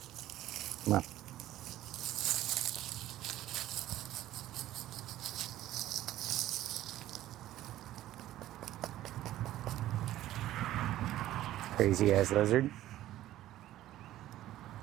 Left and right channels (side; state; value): left; quieter; 14.1 dB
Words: Come on. Crazy ass lizard.